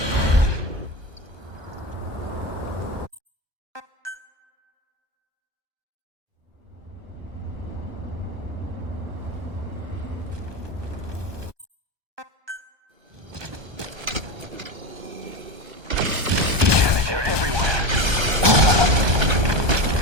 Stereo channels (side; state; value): left; late; 1.2 ms